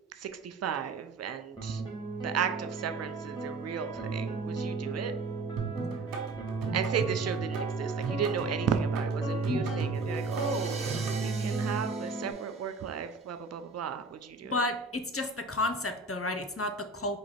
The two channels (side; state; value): left; quieter; 3.6 dB